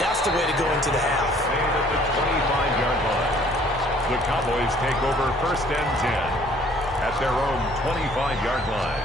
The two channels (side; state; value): both; normal; correlation 0.57